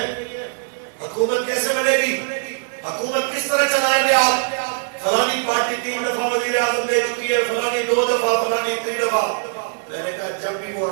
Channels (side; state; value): left; silent; digital silence